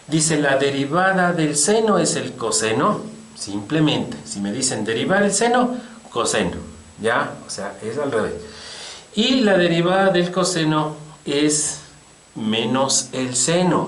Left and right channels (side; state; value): both; identical; correlation 1.00